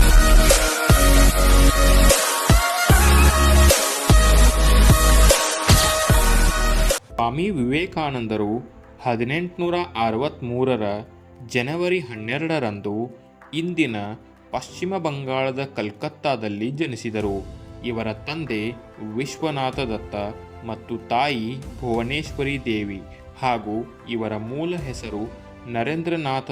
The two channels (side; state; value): both; identical; correlation 1.00